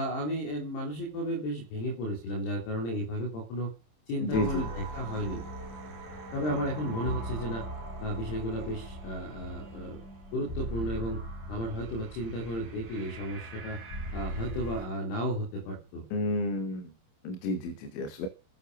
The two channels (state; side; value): late; right; 26 ms